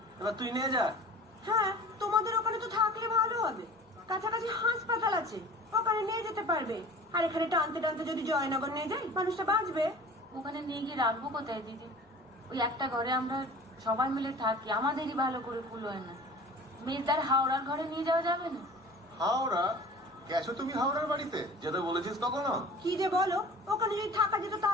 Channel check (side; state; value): both; normal; correlation 0.42